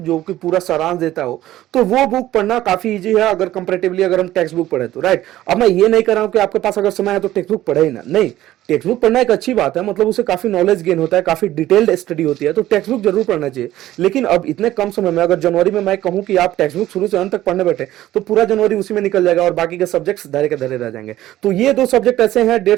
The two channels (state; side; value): quieter; left; 14.3 dB